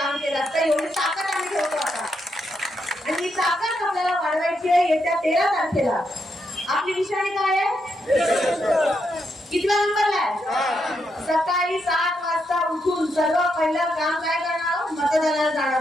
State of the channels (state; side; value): normal; both; correlation 0.81